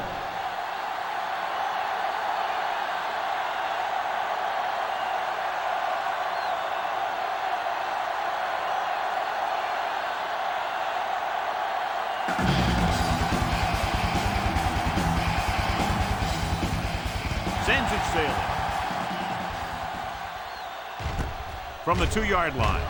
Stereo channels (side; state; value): both; identical; correlation 1.00